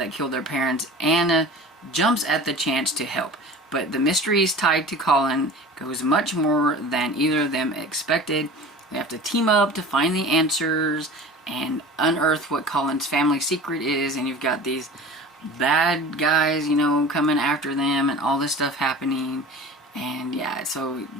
killed their parents, Anna jumps at the chance to help. But the mysteries tied to Colin goes much more than either of them expected. They have to team up to find the answers and unearth what Colin's family secret is, and you've got these bad guys, coming after them and all this stuff happening. And yeah, so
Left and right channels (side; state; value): both; normal; correlation 0.38